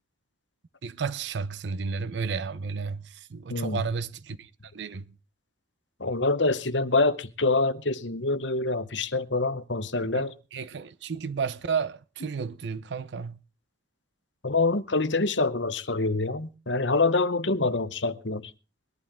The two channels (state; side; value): normal; both; correlation -0.16